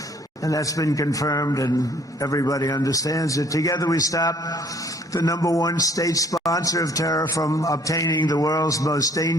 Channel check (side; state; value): both; normal; correlation 0.59